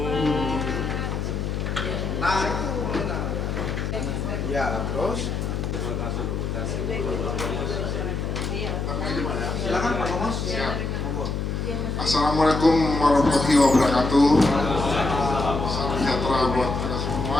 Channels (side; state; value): left; noise; hum, 2 dB below the sound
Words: Bapak. Ya, terus silakan Pak Komos. Monggo. Assalamualaikum warahmatullahi wabarakatuh. Salam sejahtera buat kita semua